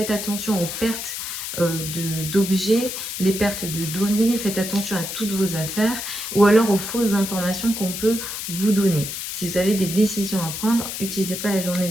attention aux pertes d'objets, les pertes de données, faites attention à toutes vos affaires, ou alors aux fausses informations qu'on peut vous donner. Si vous avez des décisions à prendre, n'utilisez pas la journée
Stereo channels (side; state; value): left; noise; hiss, 6 dB below the sound